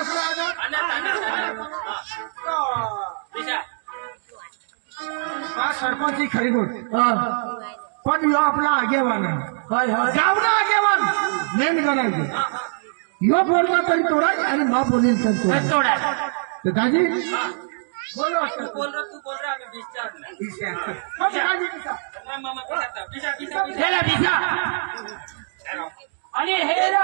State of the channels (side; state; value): left; silent; digital silence